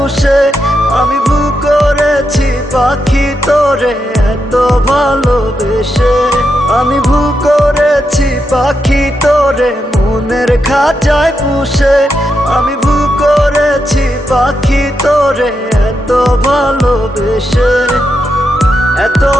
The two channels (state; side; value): normal; both; correlation 0.84